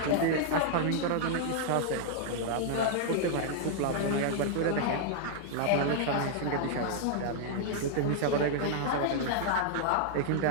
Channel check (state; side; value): different; both; correlation -0.01